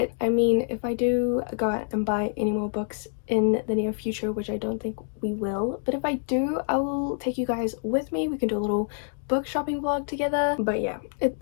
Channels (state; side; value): silent; right; digital silence